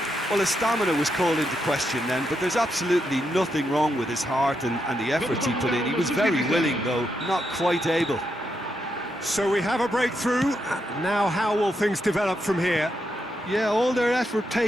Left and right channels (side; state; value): both; normal; correlation 0.82